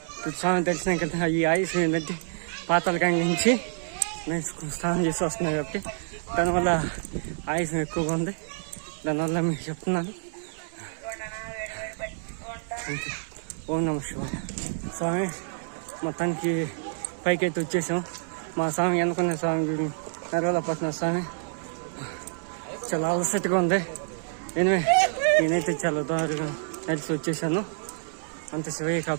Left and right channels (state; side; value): silent; left; 59 dB below the other